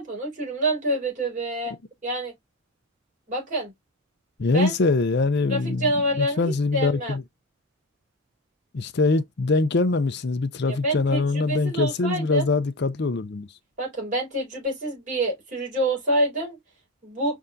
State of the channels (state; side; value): normal; both; correlation 0.18